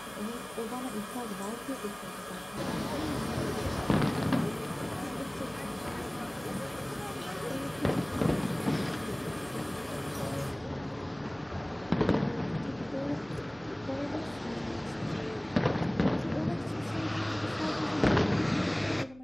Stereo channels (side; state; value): right; noise; hum, 23 dB below the sound